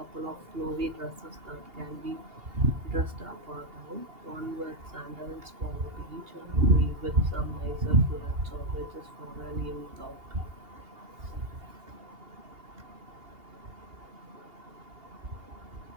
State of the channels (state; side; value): late; left; 2.8 ms